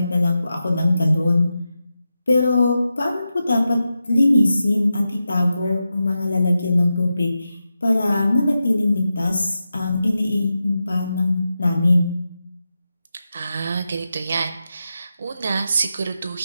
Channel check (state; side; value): inverted; both; correlation -0.90